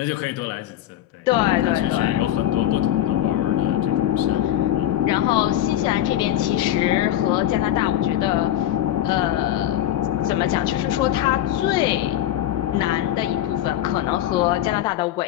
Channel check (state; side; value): quieter; right; 12.4 dB